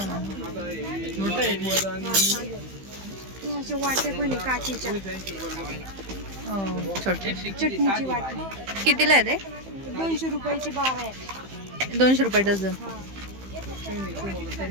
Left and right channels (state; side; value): late; left; 15 ms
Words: असे वाटे पण आहे काचीच्या. छोटे चटणीची वाटी कितीला आहे ते? 200 रुपयाची 12 आहेत. 200 रुपये डझन. हा